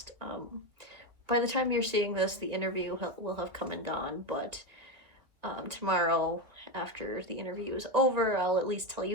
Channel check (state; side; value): late; left; 1.9 ms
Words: By the time you're seeing this, the interview will have come and gone, but tomorrow, after the interview is over, I'll at least tell